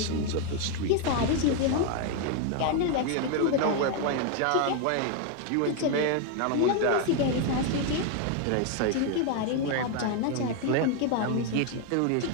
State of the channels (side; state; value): both; different; correlation 0.01